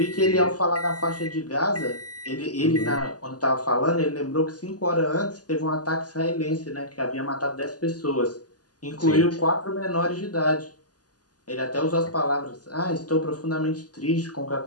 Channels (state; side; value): late; right; 0.68 ms